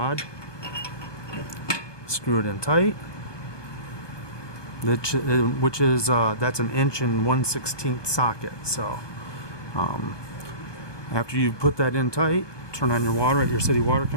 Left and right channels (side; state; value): right; late; 1.2 ms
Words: Screw it in tight. Which is that's an 1/1/16 socket. So after you put that in tight, turn on your water at your city water